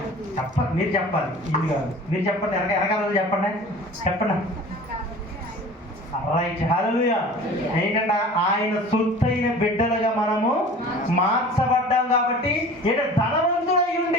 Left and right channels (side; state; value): both; normal; correlation 0.42